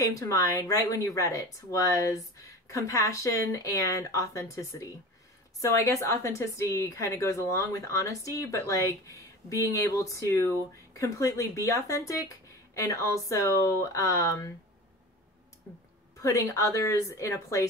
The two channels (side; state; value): both; normal; correlation 0.34